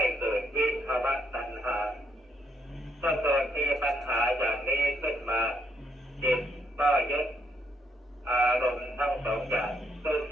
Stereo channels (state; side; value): normal; both; correlation 0.74